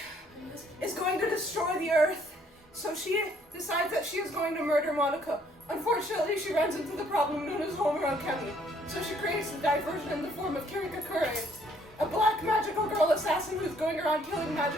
is going to destroy the earth. So she decides that she is going to murder Madoka. Unfortunately, she runs into the problem known as Homura Kemi. So she creates a diversion in the form of Kirika Kure, a black magical girl assassin who's going around killing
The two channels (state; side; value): normal; both; correlation 0.64